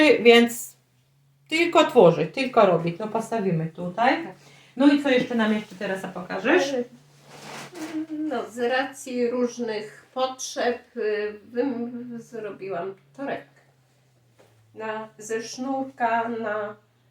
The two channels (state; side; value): identical; both; correlation 1.00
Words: więc tylko tworzyć, tylko robić. No postawimy tutaj. No i co jeszcze nam jeszcze Teresa pokażesz? No, z racji różnych potrzeb zrobiłam torebkę. Ze sznurka na...